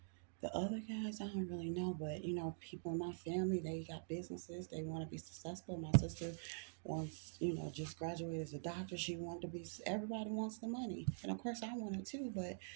The other guys, I don't really know, but people in my family, they got businesses. They want to be successful. My sister wants, just graduated as a doctor. She wanted to be, everybody wants the money. And of course, I want it too, but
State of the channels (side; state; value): left; silent; digital silence